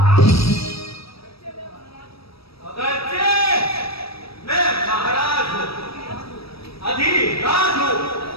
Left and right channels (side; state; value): right; late; 0.76 ms